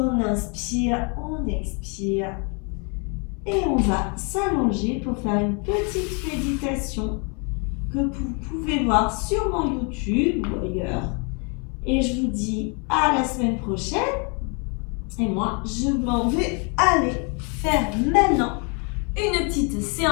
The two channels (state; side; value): quieter; right; 35.4 dB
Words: inspire, on expire. Et on va s'allonger pour faire une petite méditation que vous pouvez voir sur mon YouTube ou ailleurs. Et je vous dis à la semaine prochaine. Et moi, je m'en vais aller faire maintenant une petite